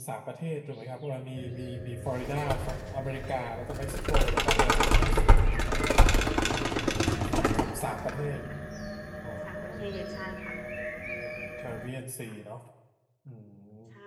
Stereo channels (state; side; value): identical; both; correlation 1.00